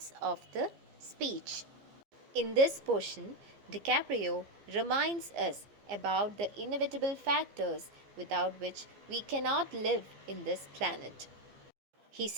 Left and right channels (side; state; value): left; late; 14 ms